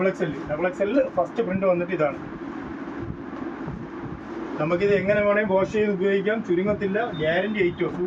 ഫസ്റ്റ് പ്രിൻ്റ് വന്നിട്ട് ഇതാണ്. നമുക്കിത് എങ്ങനെ വേണമെങ്കിൽ വാഷ് ചെയ്ത് ഉപയോഗിക്കാം, ചുരുങ്ങത്തില്ല. ഗ്യാരണ്ടി ഐറ്റം,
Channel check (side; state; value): both; identical; correlation 1.00